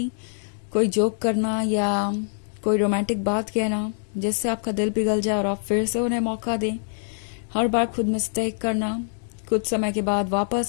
कोई जोक करना या कोई रोमांटिक बात कहना जिससे आपका दिल पिघल जाए और आप फिर से उन्हें मौका दें। हर बार खुद मिस्टेक करना, कुछ समय के बाद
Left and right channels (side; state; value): right; silent; digital silence